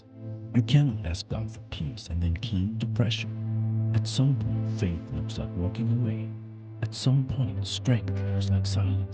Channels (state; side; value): identical; both; correlation 1.00